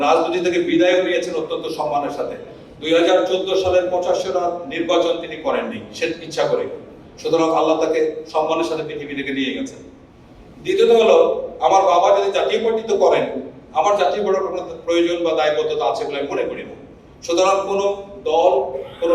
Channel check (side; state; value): both; identical; correlation 1.00